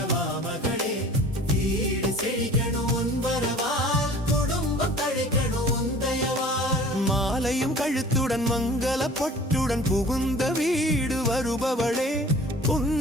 மகளே, வீடு செழிக்கணும் உன் வரவால், குடும்பம் தழைக்கணும் உன் தயவால். மாலையும் கழுத்துடன் மங்கள பொட்டுடன் புகுந்த வீடு வருபவளே,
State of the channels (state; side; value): normal; both; correlation 0.46